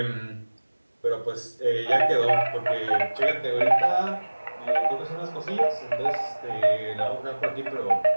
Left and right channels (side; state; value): both; inverted; correlation -1.00